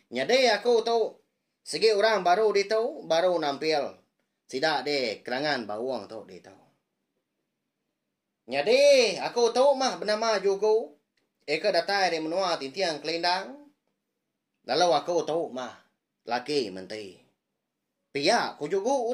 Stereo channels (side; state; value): both; identical; correlation 1.00